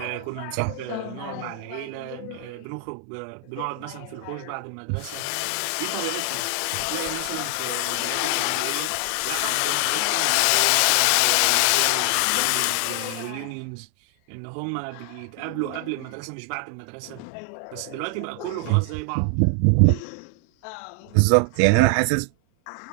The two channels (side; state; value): both; different; correlation 0.00